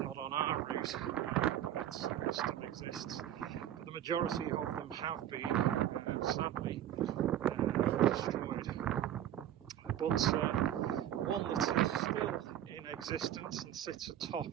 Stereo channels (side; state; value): left; quieter; 11.5 dB